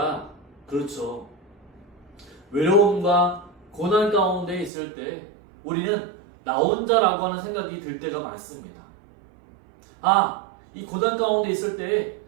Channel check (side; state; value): left; drops out; at 4.7 s